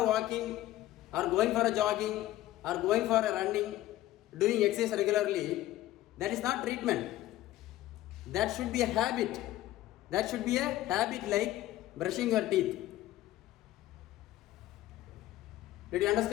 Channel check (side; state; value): right; quieter; 15.0 dB